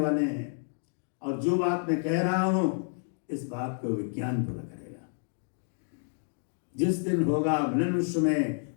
वाले हैं, और जो बात मैं कह रहा हूं इस बात को विज्ञान पूरा करेगा। जिस दिन होगा मिलन विश्व में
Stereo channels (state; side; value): silent; right; 58 dB below the other